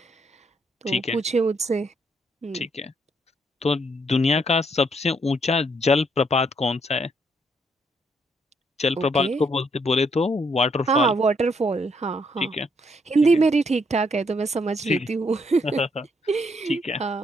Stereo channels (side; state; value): both; normal; correlation 0.72